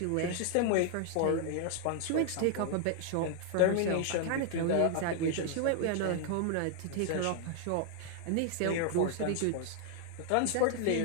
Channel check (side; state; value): both; different; correlation 0.00